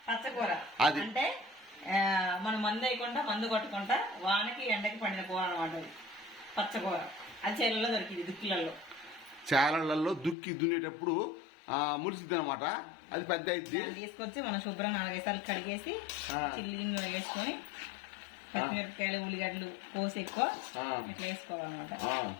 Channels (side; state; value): right; drops out; at 10.4 s